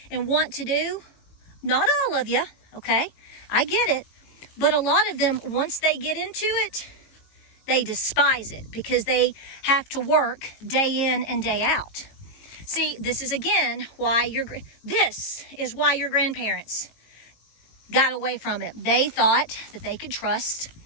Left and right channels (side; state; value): right; late; 18 ms